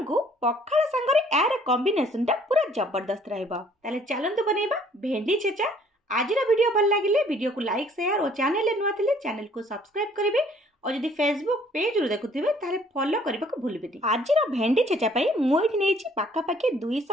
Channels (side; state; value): both; normal; correlation 0.59